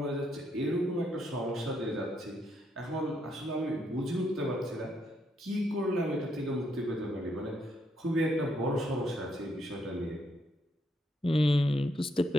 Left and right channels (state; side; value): normal; both; correlation 0.75